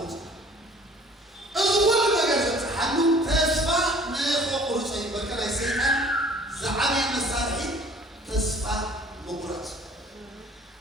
أول ما قدرت حنو تصفى نقول شيء بكرة سيئات زعامي مسارحي تصفى مقرات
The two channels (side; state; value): both; normal; correlation 0.52